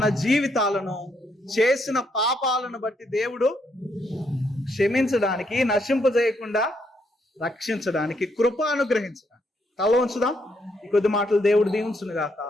జీవితాలను చేసిన పాపాలను బట్టి దేవుడు క్షమించడానికి, నశింపజేయకుండా రక్షించడానికి, కృప అనుగ్రహించడానికి. తల ఉంచుదాం. ఈ కొద్ది మాటలు దేవుడు దీవించును గాక.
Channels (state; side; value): normal; both; correlation 0.75